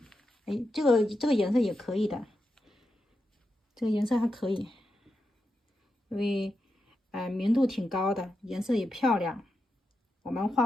哎，这个颜色也可以的，这个颜色还可以，因为明度挺高的，颜色也漂亮。我们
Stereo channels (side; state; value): both; normal; correlation 0.87